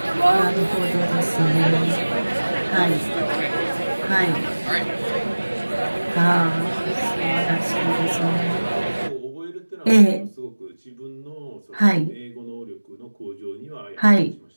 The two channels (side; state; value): both; inverted; correlation -1.00